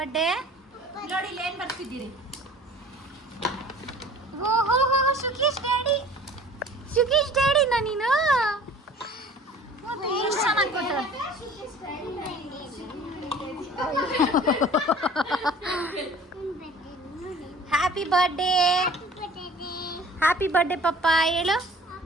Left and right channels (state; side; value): normal; both; correlation 0.47